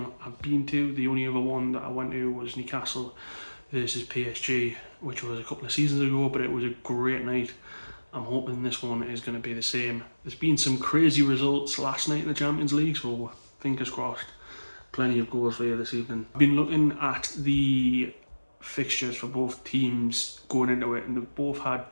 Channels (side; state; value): both; inverted; correlation -1.00